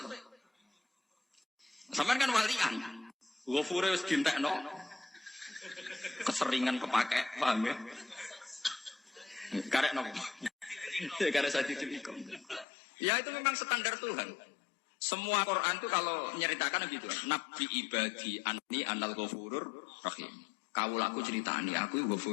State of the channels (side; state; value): right; drops out; at 12.7 s